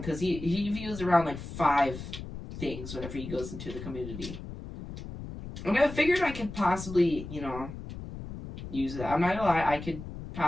because he views around like 5 things whenever he goes into the community. And I figured I could possibly, you know, use that. I'm not gonna lie, I could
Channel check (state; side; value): noise; left; rumble, 10 dB below the sound